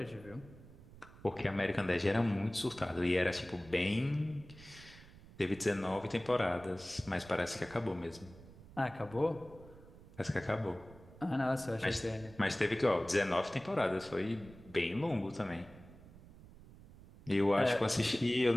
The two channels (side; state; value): right; noise; rumble, 20 dB below the sound